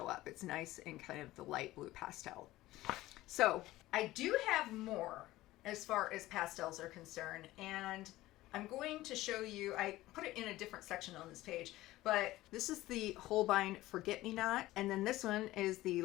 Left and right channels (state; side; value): quieter; right; 16.9 dB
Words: up. It's nice in kind of the light blue pastel. So I do have more as far as pastels are concerned, and I'm going to show you, I put it in a different section on this page, but this is the Holbein Forget-Me-Not, and then this one is the